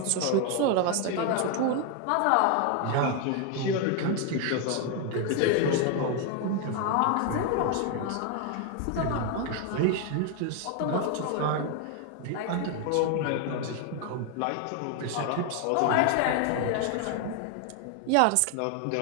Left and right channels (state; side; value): different; both; correlation 0.01